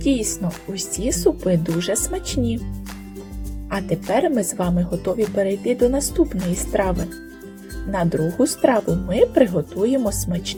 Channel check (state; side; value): identical; both; correlation 1.00